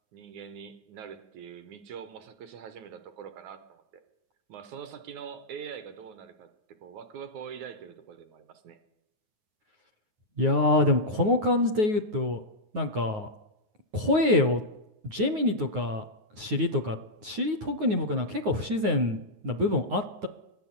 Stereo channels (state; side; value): late; left; 9.5 ms